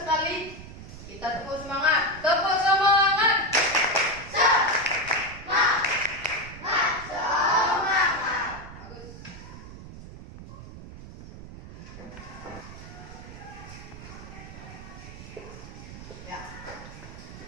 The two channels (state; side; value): noise; right; rumble, 14 dB below the sound